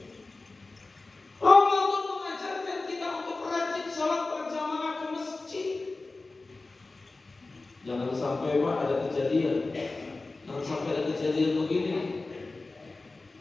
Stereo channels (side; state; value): right; quieter; 3.4 dB